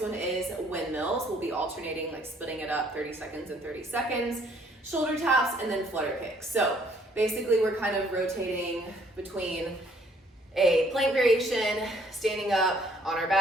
one is windmills. We'll be alternating, like splitting it up 30 seconds and 30 seconds. Shoulder taps and then flutter kicks. So basically we're kind of rotating between a plank variation, standing up on our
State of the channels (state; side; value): normal; both; correlation 0.63